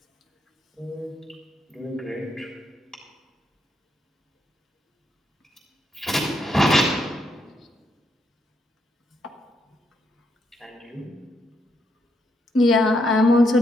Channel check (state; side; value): normal; both; correlation 0.77